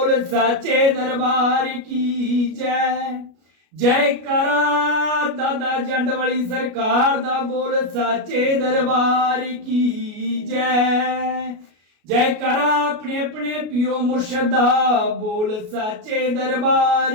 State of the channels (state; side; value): late; left; 33 ms